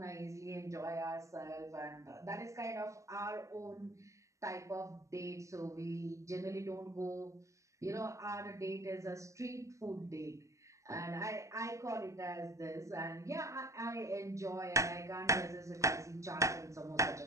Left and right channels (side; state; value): left; late; 0.15 ms